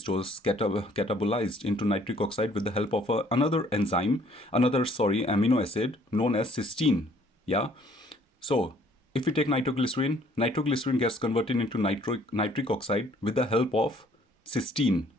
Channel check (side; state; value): both; normal; correlation 0.60